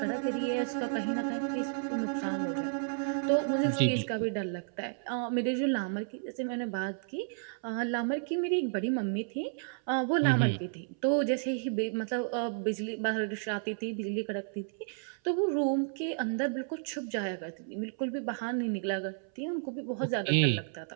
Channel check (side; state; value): left; silent; 56 dB below the other